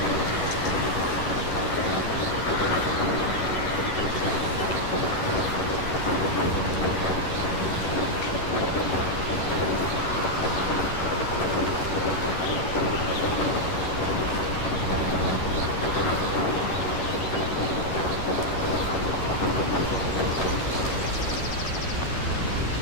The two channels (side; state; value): right; late; 11 ms